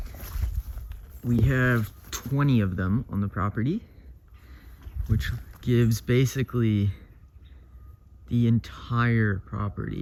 We have 20 of them on the property, which gives basically the entire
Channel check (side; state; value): both; identical; correlation 1.00